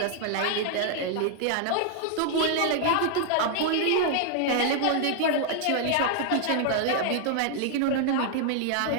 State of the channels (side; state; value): both; different; correlation 0.00